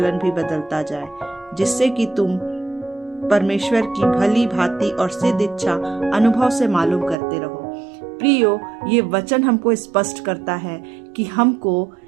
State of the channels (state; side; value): drops out; left; at 7.2 s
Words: भी बदलता जाए, जिससे कि तुम परमेश्वर की भली भांति और सिद्ध इच्छा अनुभव से मालूम करते रहो। प्रियो, ये वचन हमको स्पष्ट करता है कि हमको